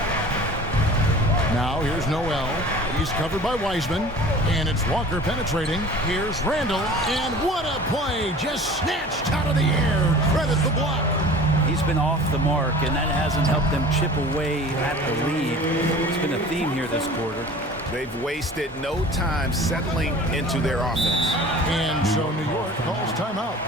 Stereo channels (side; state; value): both; normal; correlation 0.42